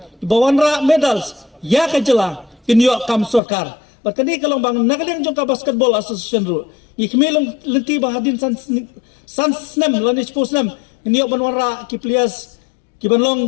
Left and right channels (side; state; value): right; drops out; at 3.4 s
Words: bawan ra medals ya ka jela kinyo kam sorkar berkani kalau bang nagaleng jong ka basketball association ru ikmelong lenti bahadin san snem lani sportsnem kinyo banwara ki players ki